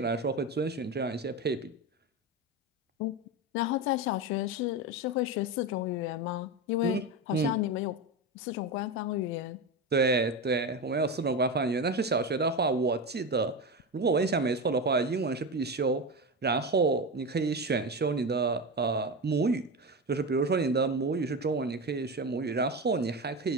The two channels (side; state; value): both; normal; correlation 0.19